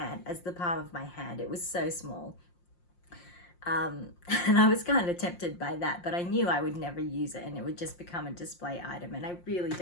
as the palm of my hand. It was so small. And I was kind of tempted by that, but I knew I would never use it and it would just become a display item, and I really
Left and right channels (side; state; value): right; late; 5.7 ms